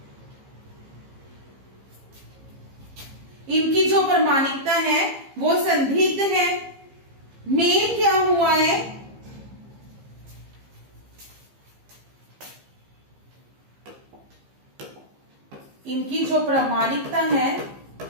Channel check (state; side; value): late; left; 15 ms